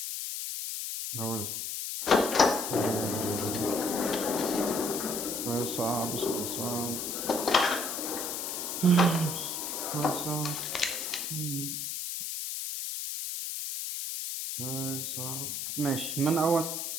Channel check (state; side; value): noise; left; hiss, 3 dB below the sound